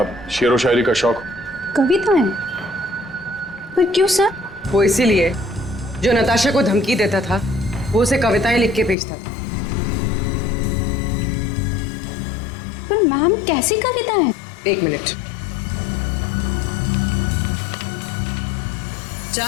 शेरो शायरी का शौक? कविताएं? पर क्यों सर? वो इसीलिए जो नताशा को धमकी देता था वो उसे कविताएं लिख के भेजता था। पर मैम कैसी कविताएं? एक मिनट।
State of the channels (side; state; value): right; drops out; at 9.0 s